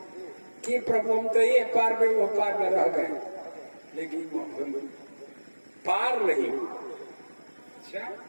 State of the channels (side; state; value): both; inverted; correlation -1.00